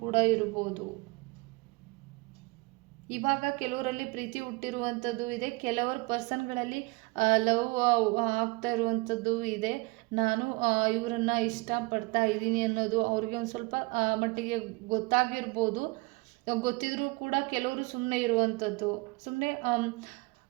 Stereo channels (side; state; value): left; quieter; 26.2 dB